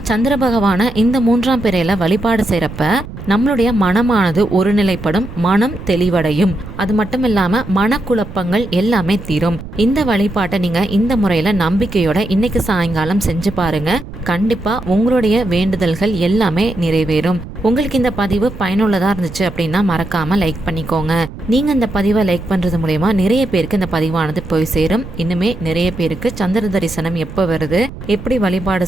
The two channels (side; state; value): right; noise; rumble, 12 dB below the sound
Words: சந்திர பகவான இந்த மூன்றாம் பிறையில வழிபாடு செய்யறப்ப நம்மளுடைய மனமானது ஒருநிலைப்படும், மனம் தெளிவடையும். அது மட்டும் இல்லாம மனக்குழப்பங்கள் எல்லாமே தீரும். இந்த வழிபாட்டை நீங்க இந்த முறையில நம்பிக்கையோட இன்னைக்கு சாயங்காலம் செஞ்சு பாருங்க. கண்டிப்பா உங்களுடைய வேண்டுதல்கள் எல்லாமே நிறைவேறும். உங்களுக்கு இந்த பதிவு பயனுள்ளதா இருந்துச்சு அப்படின்னா மறக்காம லைக் பண்ணிக்கோங்க. நீங்க இந்த பதிவை லைக் பண்றது மூலமா நிறைய பேருக்கு இந்த பதிவானது போய் சேரும். இன்னுமே நிறைய பேருக்கு சந்திர தரிசனம் எப்போ வருது, எப்படி வழிபாடு